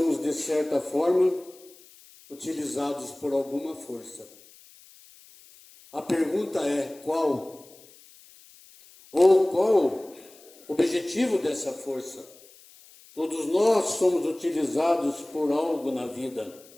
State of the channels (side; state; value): left; noise; hiss, 24 dB below the sound